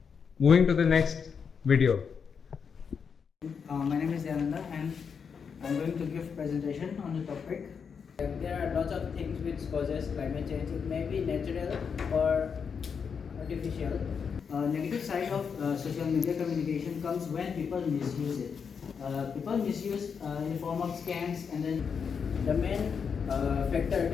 Moving to the next video. My name is Yananda and I'm going to give presentation on the topic. There are lots of things which causes climate change. It may be natural or artificial. Negative side of social media communication comes when people misuse it. People misuse in the form of scams, and then the main factor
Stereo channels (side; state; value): right; quieter; 6.4 dB